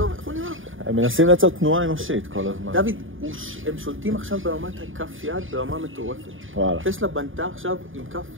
איך הוא נראה? הם מנסים לייצר תנועה אנושית כל הזמן. דוד, הם שולטים עכשיו ברמת כף יד ברמה מטורפת. וואלה. טסלה בנתה עכשיו עם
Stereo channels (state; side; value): late; left; 0.58 ms